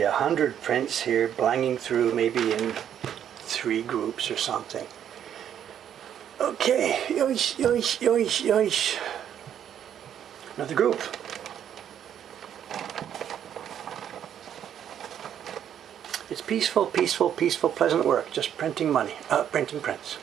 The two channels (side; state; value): left; quieter; 9.6 dB